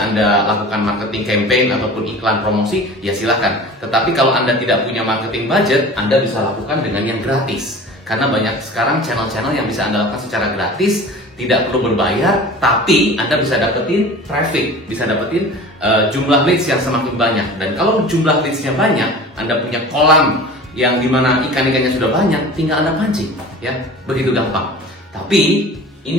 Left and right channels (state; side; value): normal; both; correlation 0.39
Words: Anda lakukan marketing campaign ataupun iklan promosi, ya silahkan. Tetapi kalau Anda tidak punya marketing budget, Anda bisa lakukan dengan yang gratis. Karena banyak sekarang channel-channel yang bisa Anda lakukan secara gratis, tidak perlu berbayar, tapi Anda bisa dapetin traffic, bisa dapetin jumlah leads yang semakin banyak. Dan kalau jumlah leadsnya banyak, Anda punya kolam yang dimana ikan-ikannya sudah banyak, tinggal Anda pancing, ya, begitu gampang. Tapi